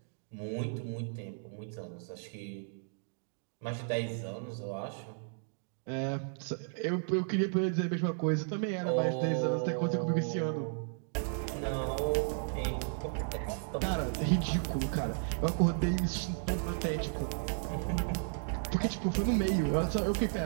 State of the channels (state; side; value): silent; left; digital silence